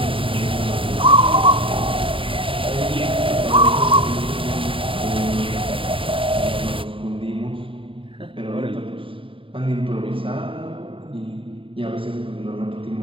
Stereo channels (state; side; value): late; left; 0.25 ms